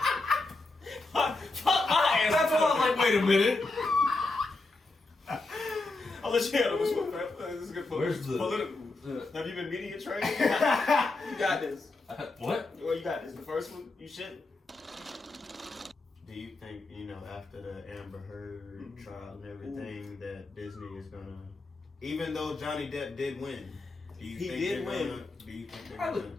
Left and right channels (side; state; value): right; quieter; 3.2 dB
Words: Fuck my ass. That's why I'm like, wait a minute. I'll let you handle this one. This is a good point. Where's the- Political. Have you been media trained? You got this. What? Well, you got this. The first one, you should. Do you think, after the Amber Heard trial and everything, that Disney is gonna, even though Johnny Depp did win, do you He think did they're win. gonna, do you think they're gonna